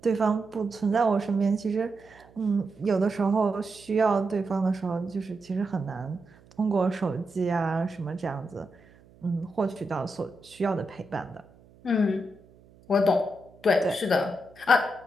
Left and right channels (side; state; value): right; noise; hum, 27 dB below the sound